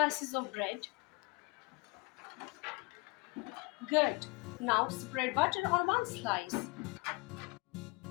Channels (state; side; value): quieter; right; 27.1 dB